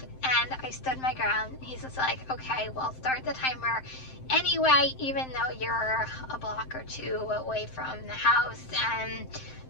And I stood my ground. He's just like, okay, well, start the timer anyway, even though you're a block or two away from the house. And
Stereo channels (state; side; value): late; right; 7.7 ms